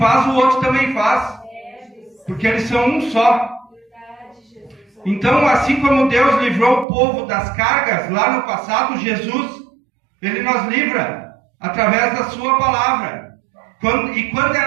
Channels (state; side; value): drops out; left; at 6.9 s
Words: o outro também faz. Porque eles são um só. Então, assim como Deus livrou o povo das cargas lá no passado, Jesus, ele nos livra através da sua palavra. E quando